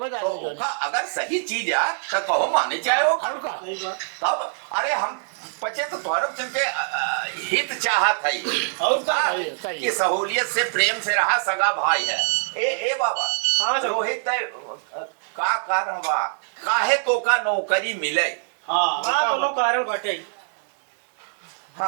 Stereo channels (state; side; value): silent; left; digital silence